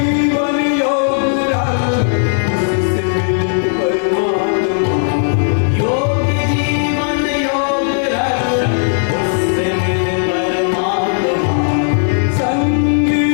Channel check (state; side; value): silent; right; digital silence